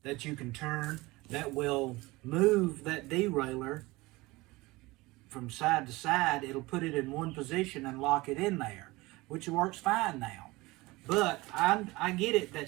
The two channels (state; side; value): quieter; left; 21.4 dB